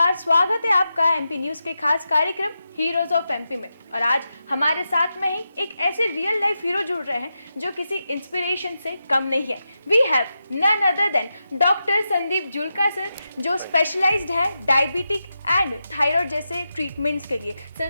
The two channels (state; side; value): inverted; both; correlation -0.89